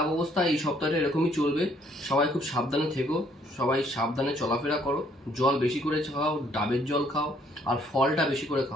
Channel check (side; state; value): both; normal; correlation 0.65